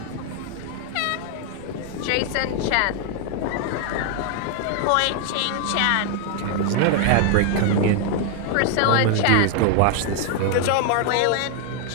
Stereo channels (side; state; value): both; different; correlation 0.00